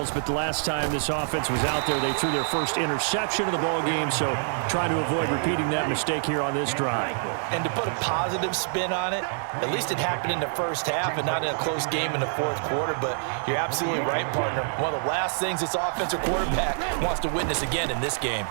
but the last time this offense was out there, they threw their first interception of the ball game, so trying to avoid repeating that mistake here on this drive. And to put a positive spin on it, at least it happened in the first half and not in a close game in the fourth quarter, but you're absolutely right, partner. One of the last things this offensive quarterback wants to witness again in this game.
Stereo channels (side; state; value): left; silent; 57 dB below the other